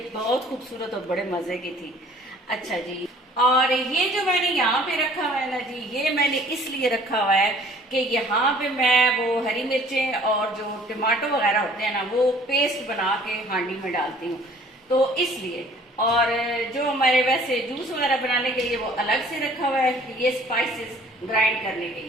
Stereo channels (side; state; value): both; normal; correlation 0.53